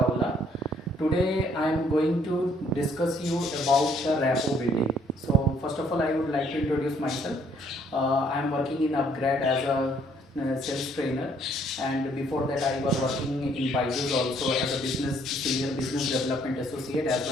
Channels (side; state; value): both; normal; correlation 0.64